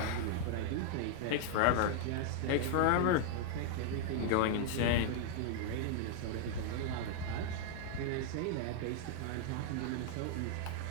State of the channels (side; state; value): both; different; correlation 0.00